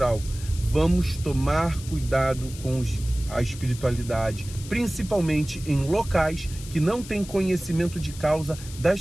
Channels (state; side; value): noise; left; hiss, 15 dB below the sound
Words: Vamos tomar cuidado com a espiritualidade, principalmente em locais que não têm conhecimento de causa